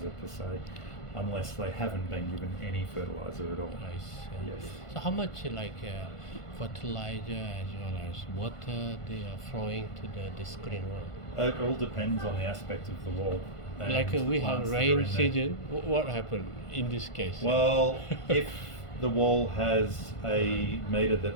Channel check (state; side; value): late; right; 1.5 ms